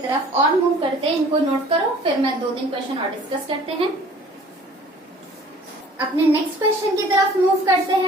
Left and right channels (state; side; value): normal; both; correlation 0.50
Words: और मूव करते हैं, इनको नोट करो, फिर मैं 2-3 क्वेश्चन और डिस्कस करते हैं। अपने नेक्स्ट क्वेश्चन की तरफ मूव करते